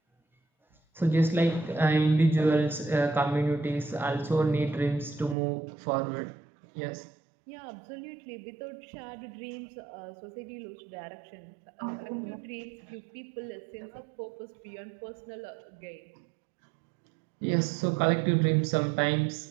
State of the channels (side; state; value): left; drops out; at 5.4 s